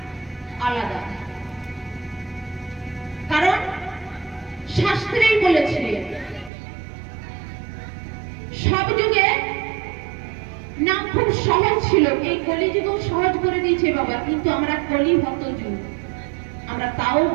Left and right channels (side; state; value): left; drops out; at 6.5 s